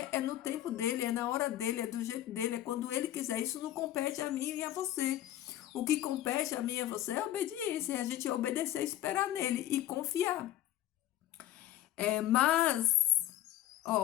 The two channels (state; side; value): quieter; right; 13.3 dB